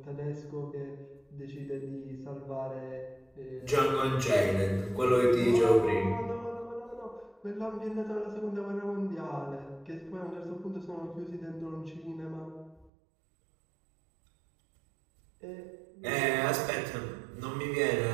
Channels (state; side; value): drops out; left; at 12.9 s